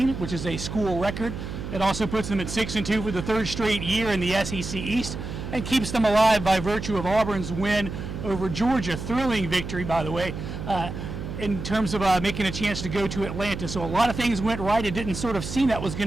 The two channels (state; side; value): noise; right; hum, 7 dB below the sound